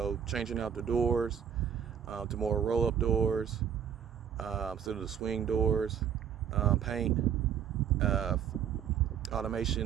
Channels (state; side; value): quieter; left; 8.6 dB